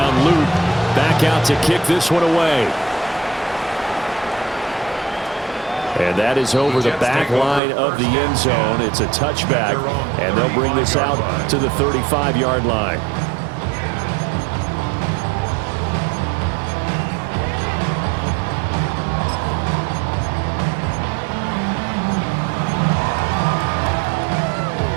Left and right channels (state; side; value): drops out; left; at 7.6 s